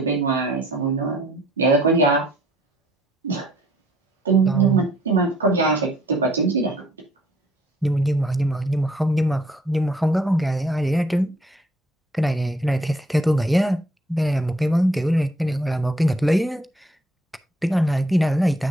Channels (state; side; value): normal; both; correlation 0.63